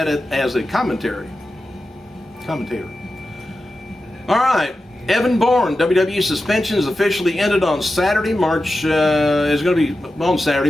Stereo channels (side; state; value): both; normal; correlation 0.92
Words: it as a commentator. All right, Evan Bourne, WWE suspension is officially ended on Saturday, March